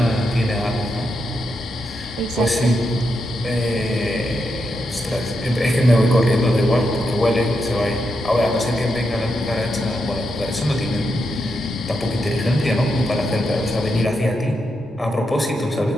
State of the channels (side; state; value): both; normal; correlation 0.84